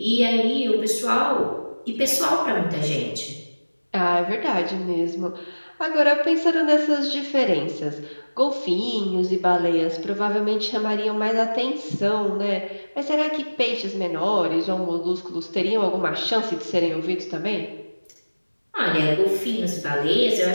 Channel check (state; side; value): inverted; both; correlation -1.00